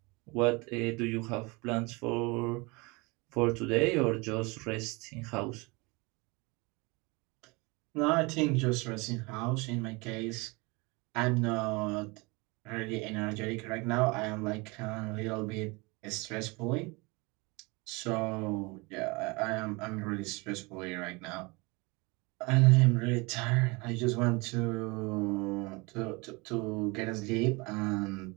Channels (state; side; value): quieter; left; 26.6 dB